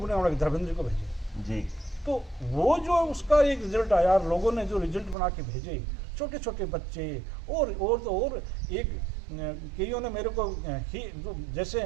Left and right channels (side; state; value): left; drops out; at 5.2 s